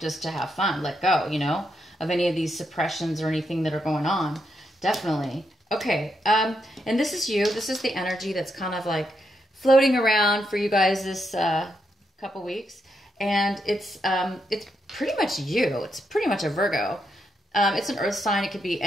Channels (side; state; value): both; normal; correlation 0.81